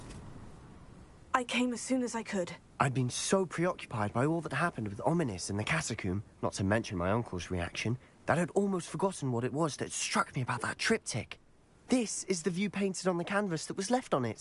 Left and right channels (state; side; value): identical; both; correlation 1.00